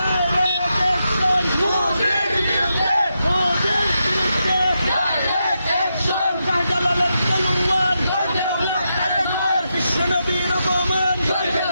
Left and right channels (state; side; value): inverted; both; correlation -0.85